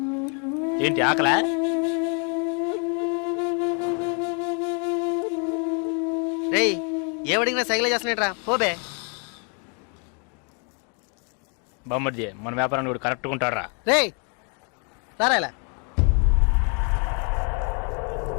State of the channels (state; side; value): quieter; right; 37.7 dB